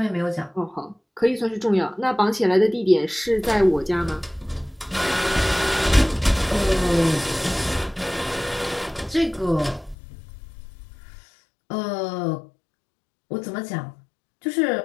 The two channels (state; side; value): drops out; right; at 10.0 s